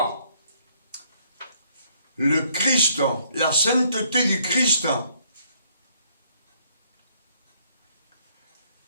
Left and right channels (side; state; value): both; inverted; correlation -0.67